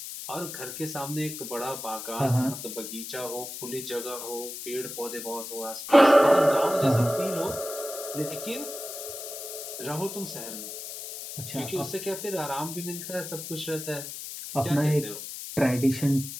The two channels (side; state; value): left; noise; hiss, 9 dB below the sound